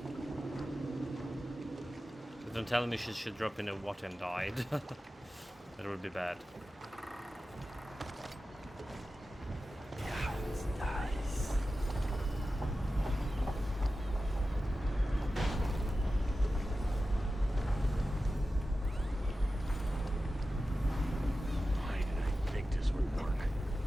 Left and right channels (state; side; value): normal; both; correlation 0.94